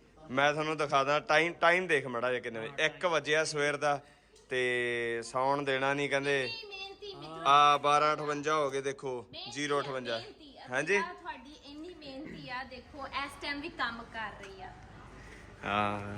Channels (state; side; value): identical; both; correlation 1.00